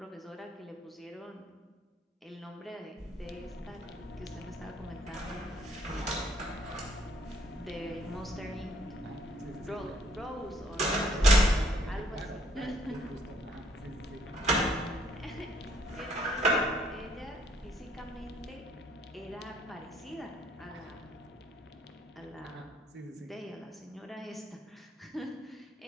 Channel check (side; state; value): both; normal; correlation 0.65